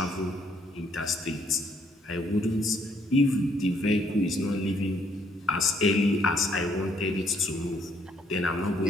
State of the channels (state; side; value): normal; both; correlation 0.69